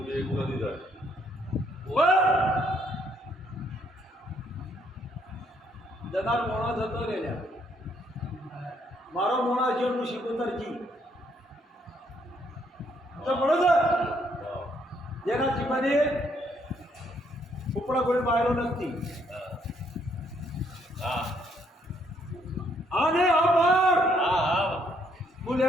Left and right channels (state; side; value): normal; both; correlation 0.70